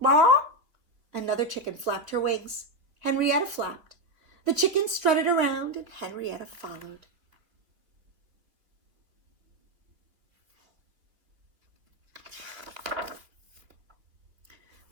Another chicken flapped her wings. Henrietta flapped. The chickens strutted around and Henrietta followed.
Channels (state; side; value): late; left; 3.3 ms